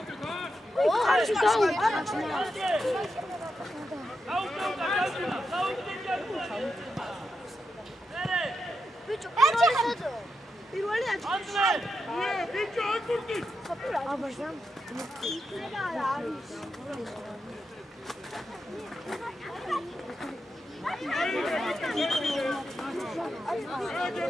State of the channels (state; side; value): normal; both; correlation 0.86